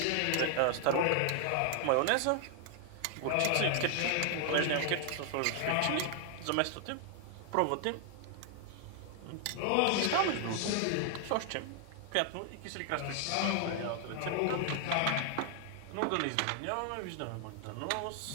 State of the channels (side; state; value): both; different; correlation 0.00